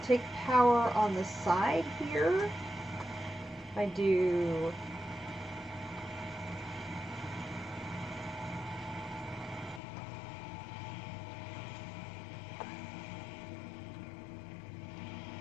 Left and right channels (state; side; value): drops out; right; at 9.8 s